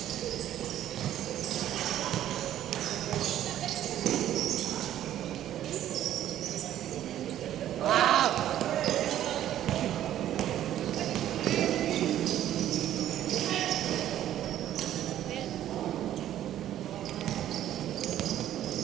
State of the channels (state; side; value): quieter; left; 12.0 dB